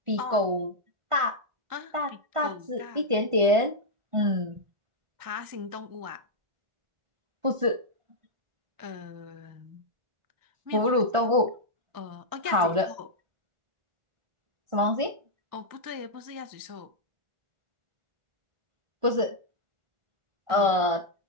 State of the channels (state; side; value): late; left; 1.4 ms